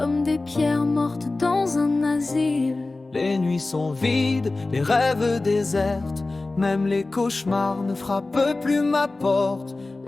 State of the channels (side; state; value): right; quieter; 3.2 dB